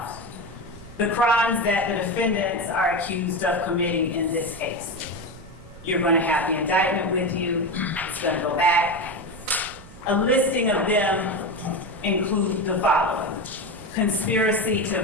the crimes that the defendants are accused of committing in this case. You're going to have the indictment with you. It's going to go back. A listing of them include the following: conspiracy to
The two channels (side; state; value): right; noise; rumble, 19 dB below the sound